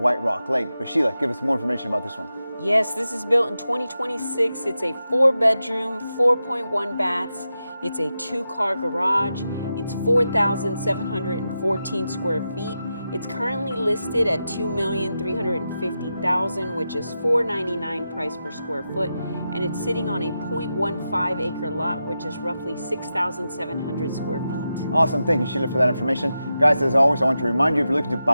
Rock Lake. But Sheila, give us more information about this one. Yes, this is built in 2026. It's a 4-bedroom, 4.1 baths. It's a 2-car garage. It's 4,714 square feet. It's currently listed at $2,350,000, which is $499 price per square foot, and it's sitting on a 0.15 acre lot, which is roughly 6,700 square feet. Awesome, thank you Sheila for that information. Guys, as always, I want to remind you, if you're looking to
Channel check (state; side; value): inverted; both; correlation -0.90